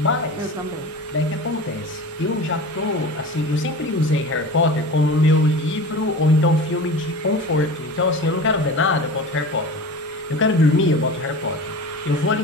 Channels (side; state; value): both; normal; correlation 0.34